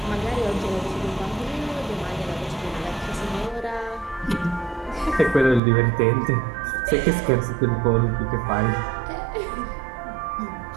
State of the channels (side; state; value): left; drops out; at 5.6 s